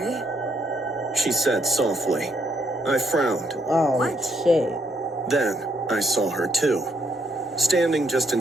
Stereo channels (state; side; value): normal; both; correlation 0.74